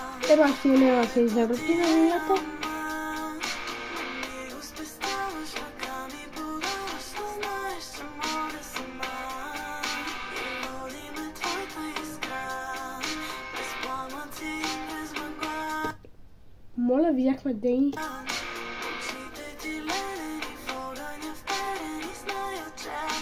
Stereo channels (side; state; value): both; identical; correlation 1.00